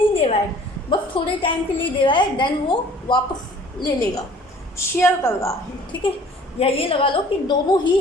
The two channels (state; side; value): normal; both; correlation 0.52